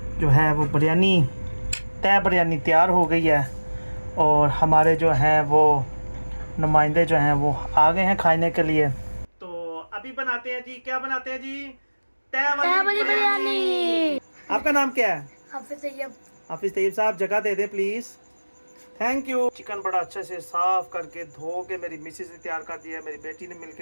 जो है वो बिरयानी, तय बिरयानी तैयार हो गई है। और हमारे जो हैं वो नुमाइंदे जो हैं वो आ गए हैं खाने के लिए। तो अभी बनाते हैं जी, क्या बनाते हैं जी? तय वाली बिरयानी। आपका नाम क्या है? हाफिज तैयब साहब, जगह दे दे प्लीज़। Thank you. चिकन बड़ा अच्छे से साफ करके धो के मेरी मिसेस ने तैयार कर दिया है, मेरी बेटी ने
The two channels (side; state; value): both; inverted; correlation -1.00